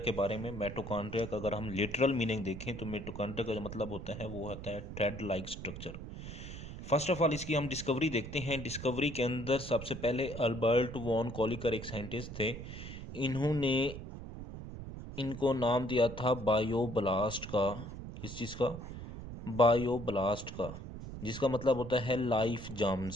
बारे में। मिटोकॉन्ड्रिया का अगर हम लिटरल मीनिंग देखें तो मिटोकॉन्ड्रिया का जो मतलब होता है वो होता है thread like structure. First of all इसकी हम डिस्कवरी देखते हैं। डिस्कवरी के अंदर सबसे पहले अल्बर्ट वॉन कॉलिकर एक साइंटिस्ट थे। इन्होंने इनको नाम दिया था बायोब्लास्ट का। किस चीज़ का? बायोब्लास्ट का, जिसका मतलब होता है लाइफ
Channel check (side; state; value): right; noise; rumble, 10 dB below the sound